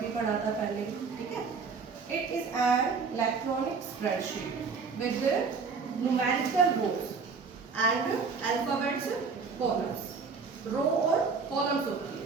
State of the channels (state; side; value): quieter; left; 5.1 dB